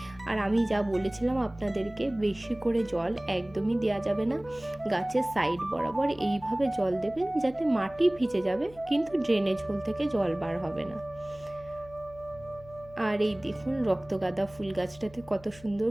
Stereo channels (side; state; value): left; noise; hum, 21 dB below the sound